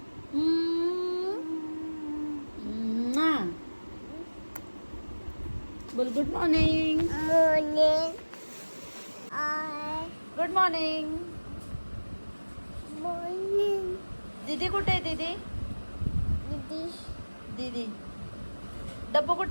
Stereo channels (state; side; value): inverted; both; correlation -1.00